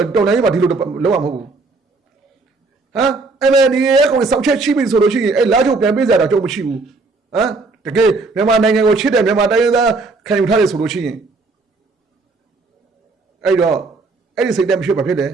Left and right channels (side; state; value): left; quieter; 3.8 dB